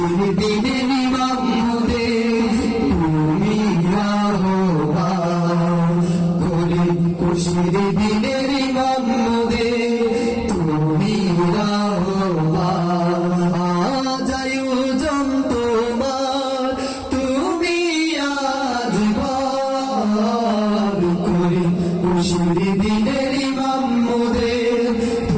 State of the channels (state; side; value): identical; both; correlation 1.00